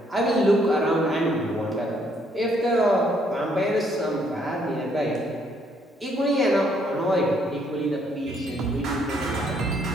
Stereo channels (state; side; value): normal; both; correlation 0.69